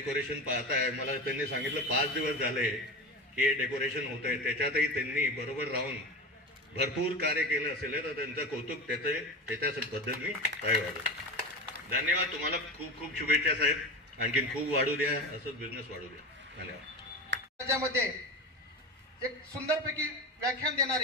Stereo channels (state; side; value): normal; both; correlation 0.26